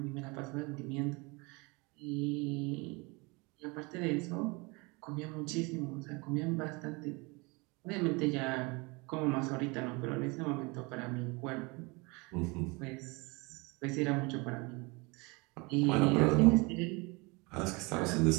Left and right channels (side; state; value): left; quieter; 27.4 dB